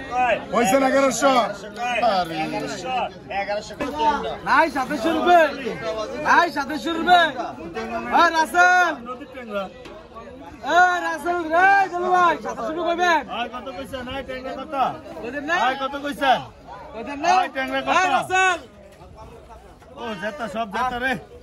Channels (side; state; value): both; identical; correlation 1.00